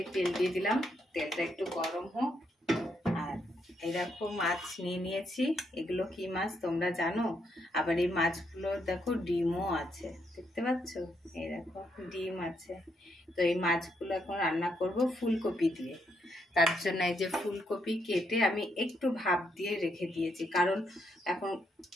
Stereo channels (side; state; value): both; normal; correlation 0.77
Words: তেল দিয়ে দিলাম, তেলটা একটু গরম হোক। আর এই দেখো মাছ নিয়ে নিয়েছি, এগুলো কি মাছ তোমরা জানো? আবার এই মাছগুলো দেখো ডিমও আছে, দেখতে পাচ্ছ? এই দেখো ডিম আছে। তো এই মাছগুলো এখন রান্না করব ফুলকপি দিয়ে। তার জন্য এই যে ফুলকপি কেটে আমি একটু ভাপ দিয়ে রেখে দিয়েছি, কারণ এখন